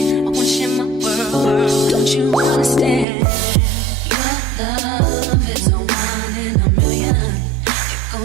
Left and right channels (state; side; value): drops out; left; at 3.1 s